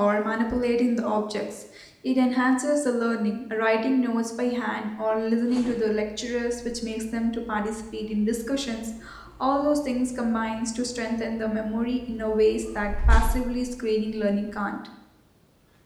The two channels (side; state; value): both; identical; correlation 1.00